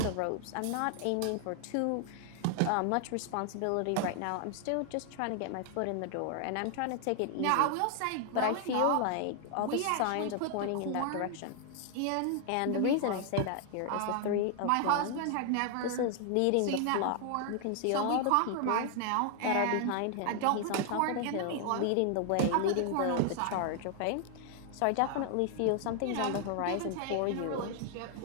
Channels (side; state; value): both; different; correlation 0.00